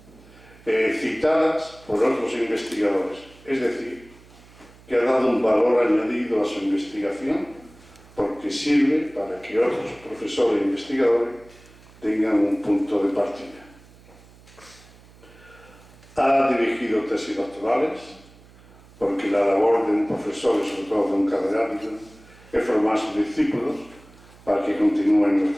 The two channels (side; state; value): right; noise; hum, 24 dB below the sound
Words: citadas por otros investigadores, es decir, que ha dado un valor añadido a su investigación porque sirve para que otros profesores e investigadores tengan un punto de partida. Ha dirigido tesis doctorales, porque la labor de un profesor y sobre todo de un catedrático es formar sus discípulos para que continúen